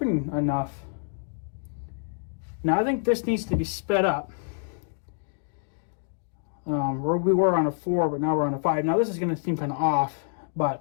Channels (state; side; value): silent; right; digital silence